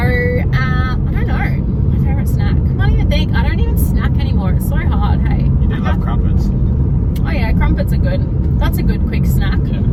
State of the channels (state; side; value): identical; both; correlation 1.00